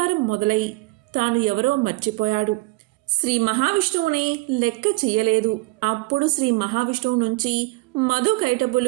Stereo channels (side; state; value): left; quieter; 22.8 dB